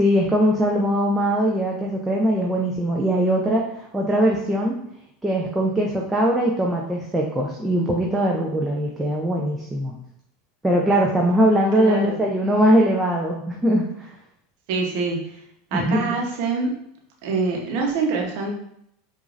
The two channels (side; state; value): both; normal; correlation 0.59